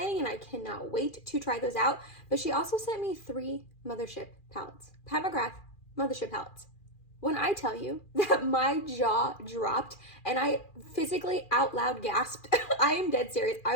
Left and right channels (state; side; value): late; right; 2.4 ms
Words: and I cannot wait to try those out. But she also sent me 3 Mothership palettes. Mcgrath Mothership palettes. When I tell you that my jaw dropped and I physically out loud gasped, I am dead serious.